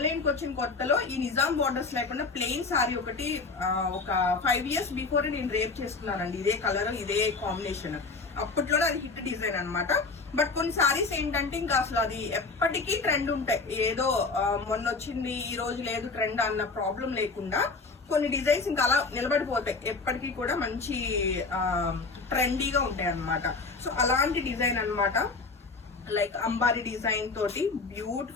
కి వచ్చిన కొత్తలో ఈ నిజాం బార్డర్స్ లేకుండా ప్లెయిన్ సారీ ఒకటి ఒక 5 years బిఫోర్ నేను రేప్ చేసుకున్నానండి. ఇదే కలర్ ఇదే కాంబినేషన్. అప్పట్లోనే అది హిట్ డిజైన్ అన్నమాట. బట్ కొన్ని సారీస్ ఏంటంటే ఇంకా అసలు అది ఎప్పటికీ ట్రెండ్ ఉంటాయి. ఏదో మొన్న వచ్చింది ఈ రోజు లేదు ట్రెండ్ అన్న ప్రాబ్లం లేకుండా కొన్ని డిజైన్స్ ఇంకా అలా నిలబడిపోతాయి, ఎప్పటికీ కూడా మంచి ట్రెండీగా ఉంటాయి అన్నమాట. సో అలాంటి డిజైన్ అన్నమాట. లైక్ అంబారీ డిజైన్ తోటి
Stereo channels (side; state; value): right; quieter; 4.1 dB